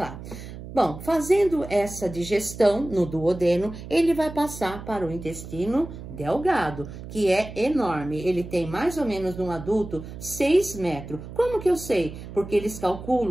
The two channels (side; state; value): right; noise; hum, 12 dB below the sound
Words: Bom, fazendo essa digestão no duodeno, ele vai passar para o intestino delgado, que é enorme. Ele tem mais ou menos no adulto 6 metros. Como que eu sei? Porque eles